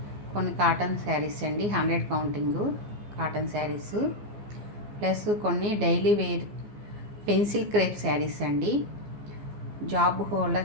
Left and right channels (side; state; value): left; late; 14 ms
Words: కొన్ని కాటన్ శారీస్ అండి, 100 కౌంటింగు కాటన్ శారీస్, ప్లస్ కొన్ని daily wear pencil crepe saris అండి. జాబ్